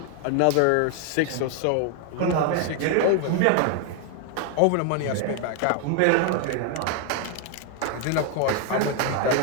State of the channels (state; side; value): different; both; correlation 0.00